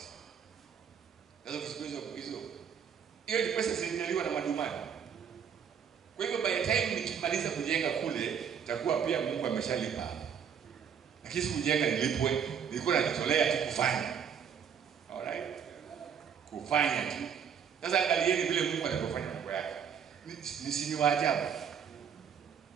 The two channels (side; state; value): left; quieter; 7.7 dB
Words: Sasa kusikizo hiyo ni pesa zilinyaliwa na madumani. Kwa hivyo by the time nikimaliza kujenga kule itakuwa pia Mungu ameshalipa. Lakini kujenga nilipwe, nilikuwa najitolea tu kufanya. Alright? Kufanya tu. Sasa angalieni vile Mungu anapofanya mambo yake. Ni waajabu.